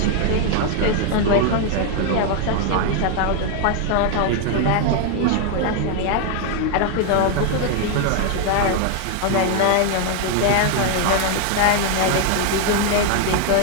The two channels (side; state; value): both; different; correlation 0.00